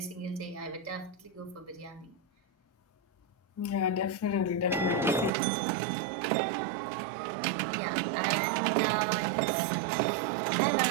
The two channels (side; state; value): left; drops out; at 5.3 s